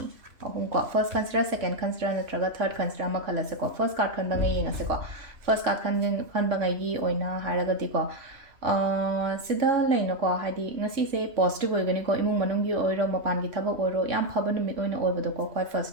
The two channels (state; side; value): late; left; 3.0 ms